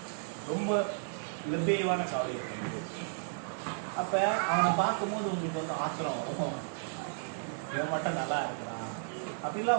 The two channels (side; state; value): left; silent; 56 dB below the other